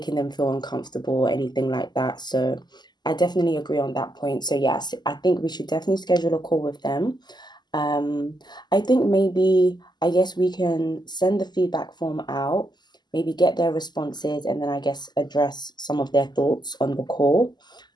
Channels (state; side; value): late; right; 0.21 ms